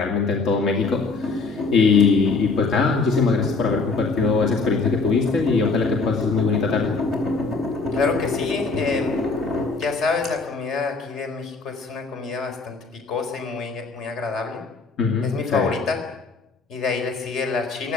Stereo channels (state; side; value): quieter; right; 4.1 dB